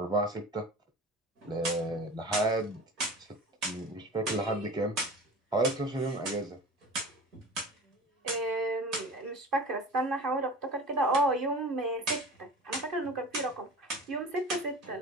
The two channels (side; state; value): both; normal; correlation 0.36